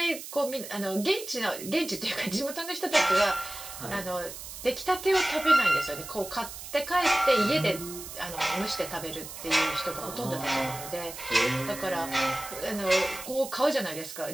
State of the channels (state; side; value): noise; right; hiss, 11 dB below the sound